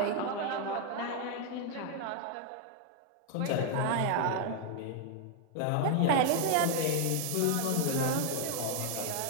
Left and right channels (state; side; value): different; both; correlation 0.00